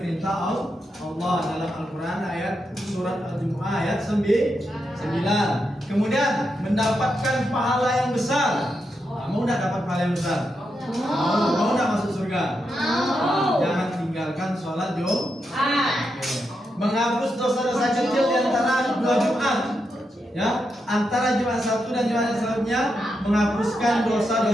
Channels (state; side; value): normal; both; correlation 0.85